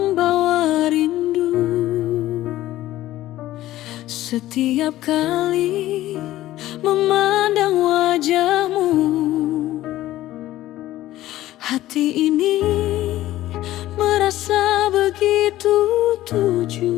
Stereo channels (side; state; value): right; quieter; 15.0 dB